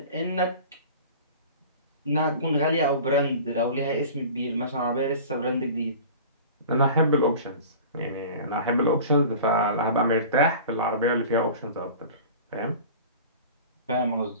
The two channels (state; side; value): inverted; both; correlation -0.40